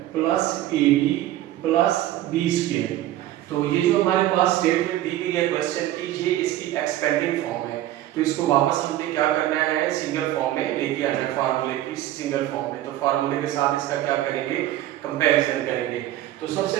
plus A B plus B square. तो ये जो हमारे पास स्टेटमेंट दी गई है क्वेश्चन की, ये इसकी एक्सपेंडिंग फॉर्म है। तो इसको वापस हमने क्या करना है, सिंगल फॉर्म में लेके आना है फार्मूले की सिंगल फॉर्म में। तो फार्मूले के साथ इसका क्या करेंगे, कंपैरिजन करेंगे। तो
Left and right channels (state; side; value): quieter; left; 14.0 dB